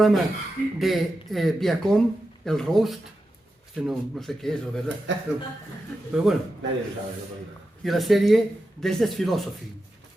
de Viacom, el Roast. No sé qué es, la verdad. Pero bueno. Nadie lo sabe. Y la serie Desde Philosophy.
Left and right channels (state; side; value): normal; both; correlation 0.90